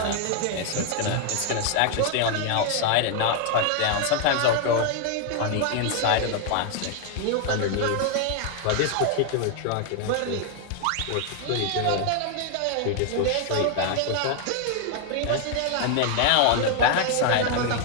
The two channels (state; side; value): different; both; correlation 0.00